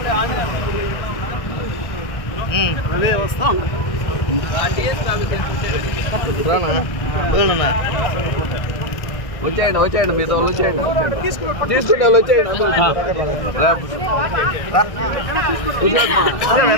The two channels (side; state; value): right; late; 1.6 ms